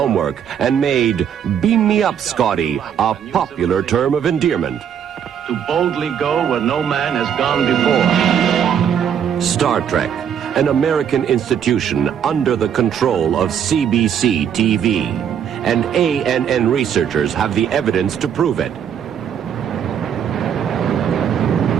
and made "Beam me up, Scotty" a popular term of endearment. To boldly go where no man has gone before. Star Trek, an American institution under the control of CBC TV. And ANN researchers have the evidence to prove it.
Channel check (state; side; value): quieter; left; 8.5 dB